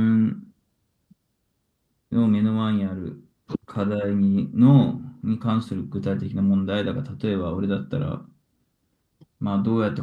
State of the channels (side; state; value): both; identical; correlation 1.00